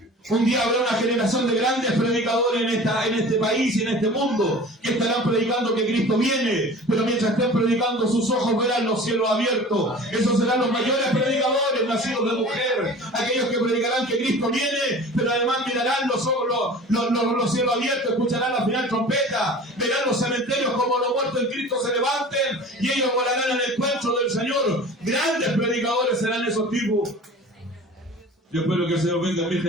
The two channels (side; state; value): both; normal; correlation 0.41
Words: Un día habrá una generación de grandes predicadores en este país y en este mundo que estarán predicando que Cristo viene, pero mientras estén predicando sus ojos verán los cielos abiertos. Esos serán los mayores predicadores nacidos de mujer, aquellos que predicarán que Cristo viene, pero además mirarán los cielos abiertos, escucharán la final trompeta, verán los cementerios como los muertos en Cristo se levanten y ellos volarán en el encuentro del Señor. Grandes predicadores serán esos tipos. Yo espero que el Señor venga en mi